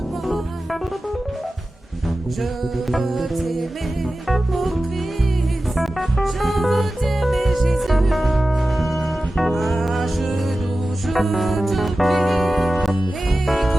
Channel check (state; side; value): normal; both; correlation 0.95